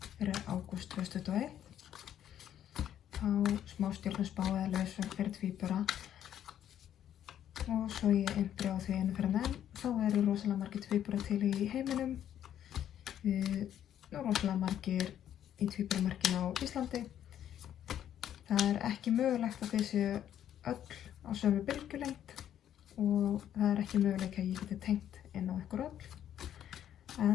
fyrir ágúst 2021. Þá smástjörnuspá eða leiðsögn fyrir tvíbura. Og svo ég einbri á því einu fyrir menn. Þá eru rosalega margir tvíburar til í heiminum. Rosalega margir í tvíburamerkinu á Íslandi. Það er ekki mögulegt að þið séu öll á sömu bylgjulengd. Og það er ekki möguleika að ég geti tengt inn á ykkur öll.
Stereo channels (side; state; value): right; quieter; 10.5 dB